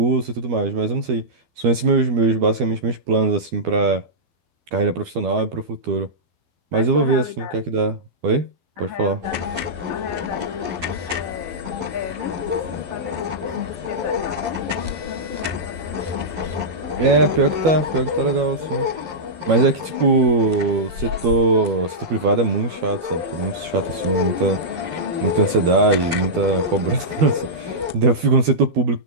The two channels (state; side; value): late; left; 12 ms